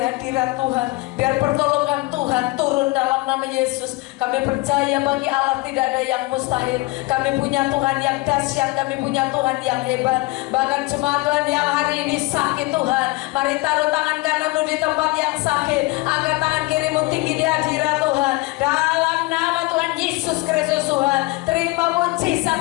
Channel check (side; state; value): right; quieter; 22.6 dB